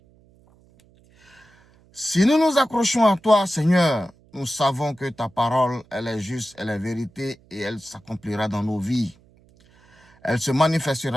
Si nous nous accrochons à toi, Seigneur, nous savons que ta parole, elle est juste, elle est vérité et elle s'accomplira dans nos vies. Elle se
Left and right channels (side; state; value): right; noise; hum, 30 dB below the sound